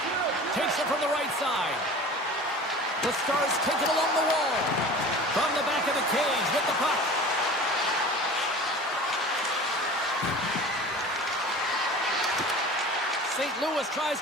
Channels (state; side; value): normal; both; correlation 0.39